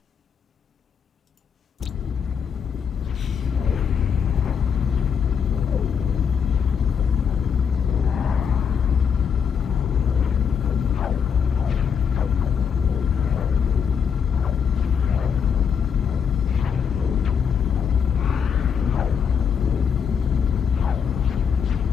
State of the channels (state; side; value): quieter; right; 7.0 dB